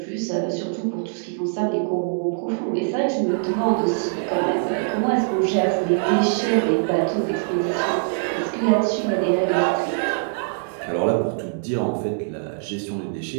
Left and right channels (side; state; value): left; silent; 63 dB below the other